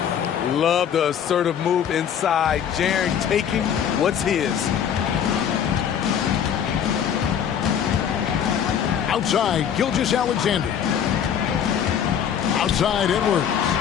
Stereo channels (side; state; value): right; quieter; 8.6 dB